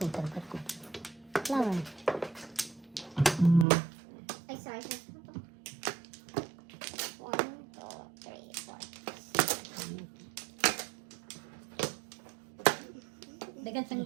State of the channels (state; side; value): drops out; left; at 3.7 s